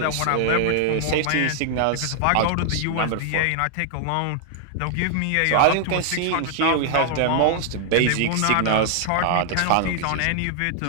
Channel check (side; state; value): both; different; correlation 0.00